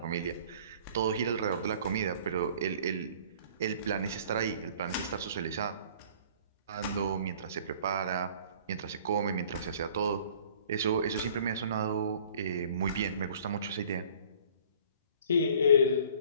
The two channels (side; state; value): both; inverted; correlation -0.53